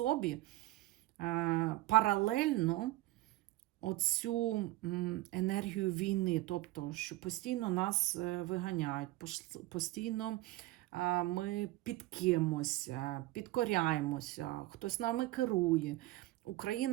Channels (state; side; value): quieter; left; 17.8 dB